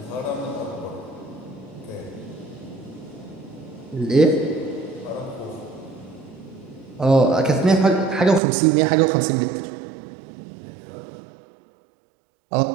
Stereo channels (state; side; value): drops out; left; at 8.4 s